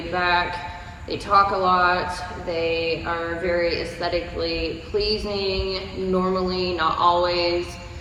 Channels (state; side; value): identical; both; correlation 1.00